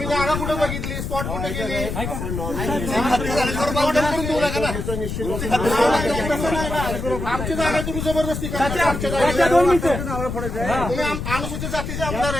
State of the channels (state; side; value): noise; left; rumble, 5 dB below the sound